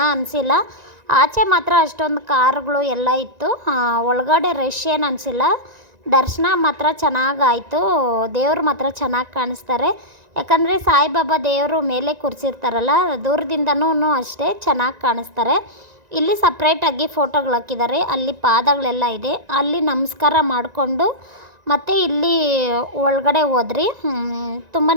ಅನಿಸಿಲ್ಲ. ಆಚೆ ಮಾತ್ರ ಅಷ್ಟೊಂದು ಕಾರುಗಳು ಎಲ್ಲ ಇತ್ತು. ಒಳಗಡೆ ರಶ್ ಏನು ಅನಿಸಿಲ್ಲ. ದರ್ಶನ ಮಾತ್ರ ಚೆನ್ನಾಗಾಯಿತು. ದೇವ್ರು ಮಾತ್ರ ಚೆನ್ನಾಗಿ ಕಾಣಿಸ್ತಾರೆ. ಯಾಕಂದರೆ ಸಾಯಿಬಾಬಾ ದೇವರು ಮೇಲೆ ಕೂರಿಸಿರ್ತಾರಲ್ಲ, ದೂರದಿಂದನೂ ಅಷ್ಟೇ ಚೆನ್ನಾಗಿ ಕಾಣಿಸ್ತಾರೆ. ಇಲ್ಲಿ ಸಪ್ರೇಟಾಗಿ ಫೋಟೋಗಳು ಹಾಕಿದ್ದಾರೆ. ಅಲ್ಲಿ ಪಾದಗಳೆಲ್ಲ ಇದೆ, ಅಲ್ಲಿ ನಮಸ್ಕಾರ ಮಾಡಿಕೊಂಡು ಮತ್ತು ಇಲ್ಲಿ ಒಳಗಡೆ ಹೋದ್ರಿ. ತುಂಬಾ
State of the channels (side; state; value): left; late; 1.9 ms